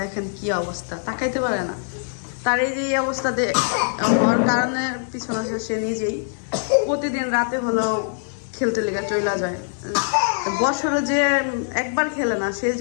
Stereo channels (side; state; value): right; silent; digital silence